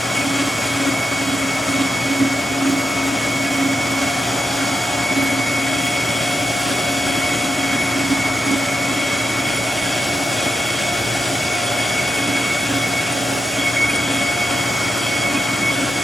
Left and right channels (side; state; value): both; normal; correlation 0.85